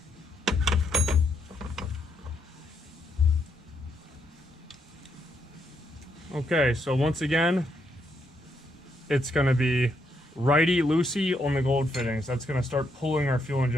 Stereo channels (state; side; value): normal; both; correlation 0.77